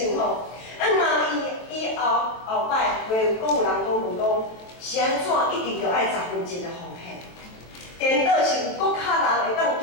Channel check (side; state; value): right; late; 23 ms